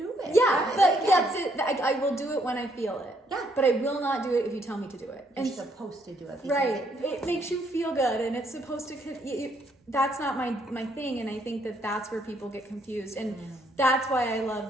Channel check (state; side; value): normal; both; correlation 0.70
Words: it. Yeah, but that's it. I will do it when I feel it. Yeah. But I will not do it if you tell me to do it. You're supposed to do it. Right. It makes you feel good, and it's supposed to... That's not my thing, and I think that's where people get confused. And that's why I